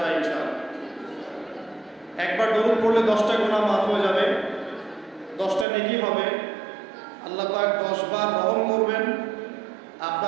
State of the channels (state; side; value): drops out; left; at 5.7 s